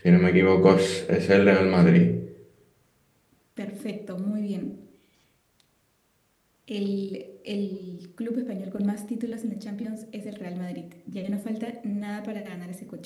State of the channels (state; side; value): identical; both; correlation 1.00